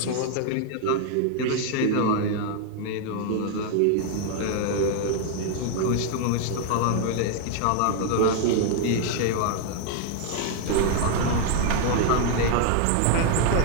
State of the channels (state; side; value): different; both; correlation 0.00